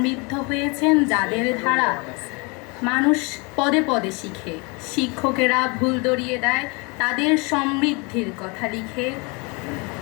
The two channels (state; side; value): quieter; right; 30.0 dB